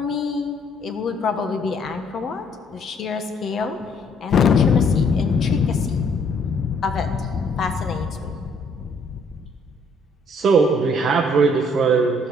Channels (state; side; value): normal; both; correlation 0.64